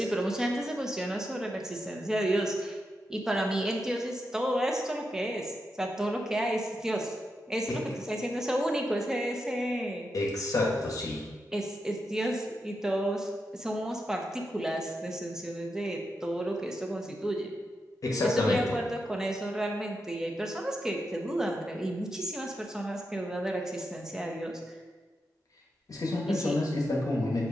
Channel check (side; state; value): both; normal; correlation 0.86